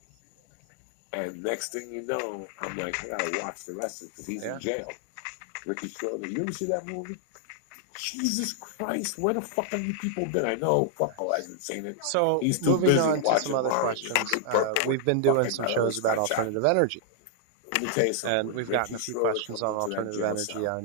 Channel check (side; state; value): both; different; correlation 0.00